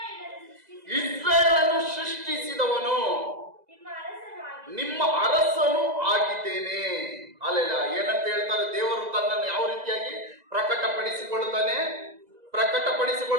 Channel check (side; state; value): left; late; 2.0 ms